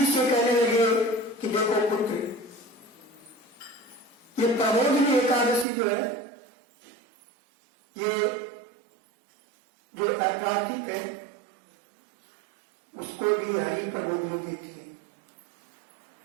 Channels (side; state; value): left; drops out; at 5.7 s